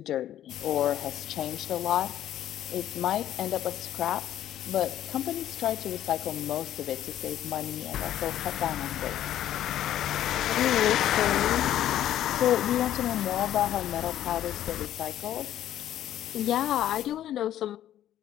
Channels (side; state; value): right; quieter; 12.0 dB